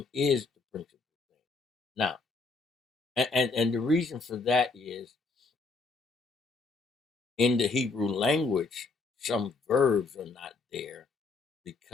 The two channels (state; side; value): quieter; right; 3.9 dB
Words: is the principal thing. Now, and the reason for that is in the Hebrew language, some verbs are not there